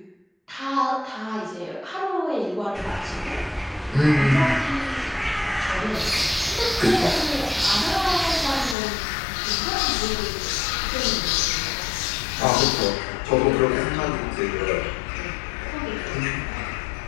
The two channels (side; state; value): right; drops out; at 8.8 s